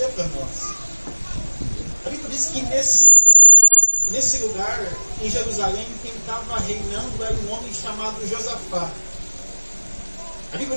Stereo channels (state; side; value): inverted; both; correlation -1.00